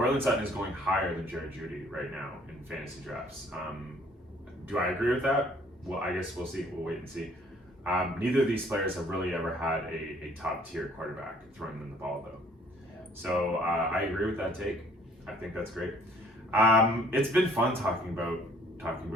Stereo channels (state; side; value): normal; both; correlation 0.58